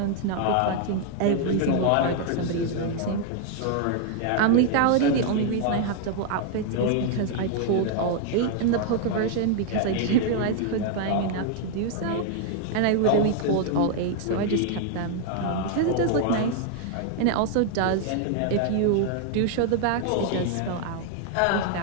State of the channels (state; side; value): different; both; correlation 0.00